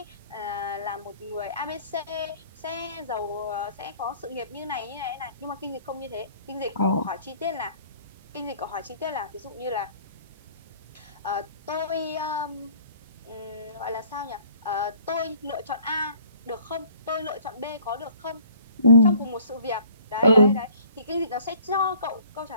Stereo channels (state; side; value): inverted; both; correlation -0.55